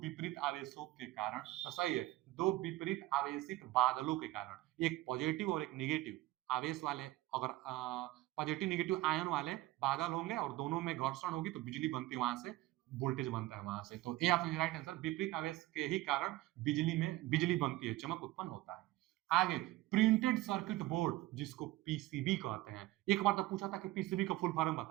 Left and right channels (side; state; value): left; quieter; 17.5 dB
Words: आवेशों के कारण। तो सही है, दो विपरीत आवेशित बादलों के कारण, एक पॉजिटिव और एक निगेटिव आवेश वाले, अगर पॉजिटिव निगेटिव आयन वाले बादल होंगे और दोनों में घर्षण होगी तो बिजली बनती है, वहां से वोल्टेज बनता है वहां से। तो ए ऑप्शन राइट आंसर, विपरीत आवेश के ही कारण बिजली में बिजली बनती है, चमक उत्पन्न होता है। आगे, प्रिंटेड सर्किट बोर्ड जिसको पीसीबी कहते हैं, एक बार तो पूछा था कि पीसीबी का फुल फॉर्म